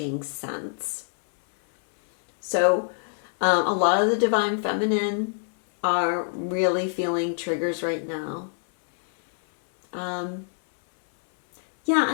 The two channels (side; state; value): right; silent; 62 dB below the other